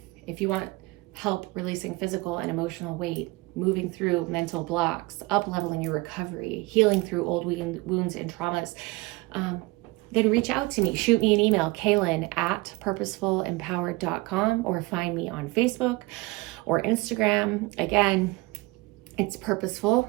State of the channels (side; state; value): left; quieter; 22.8 dB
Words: if you want help releasing physical and emotional weight, moving through mental blocks, up-leveling your recovery, healing through old wounds and traumas, then reach out to me. Shoot me an email, kaylin@purposefulempowered.com, or find me on Facebook or Instagram. Again, it's Purposeful